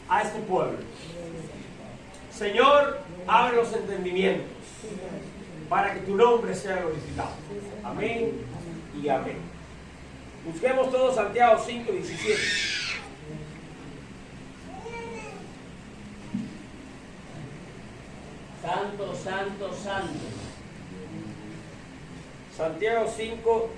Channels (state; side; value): identical; both; correlation 1.00